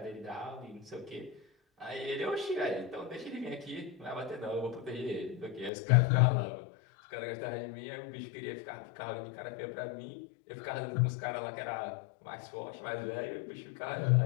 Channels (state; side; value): drops out; right; at 5.7 s